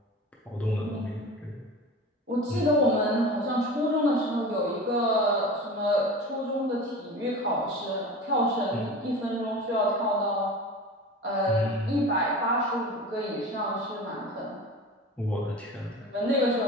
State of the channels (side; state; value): both; normal; correlation 0.34